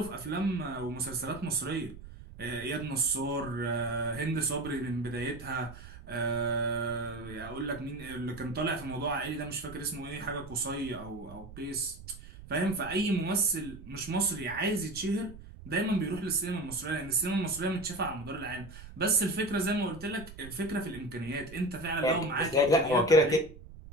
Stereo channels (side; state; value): right; noise; rumble, 16 dB below the sound